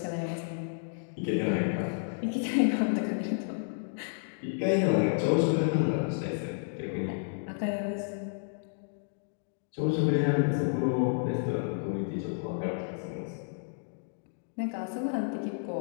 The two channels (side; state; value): right; silent; digital silence